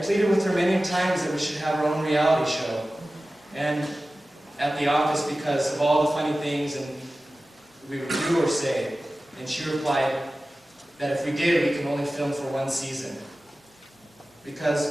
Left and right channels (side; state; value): both; normal; correlation 0.96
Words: with her many times that we should have our own reality show, and at the office because of all the funny things and we would do or say, and she replied that if we did, we could only film for 1 season.